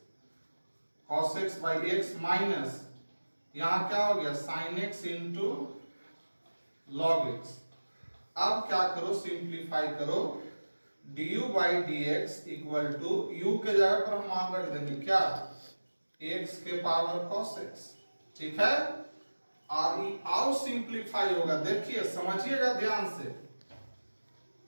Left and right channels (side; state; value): both; inverted; correlation -1.00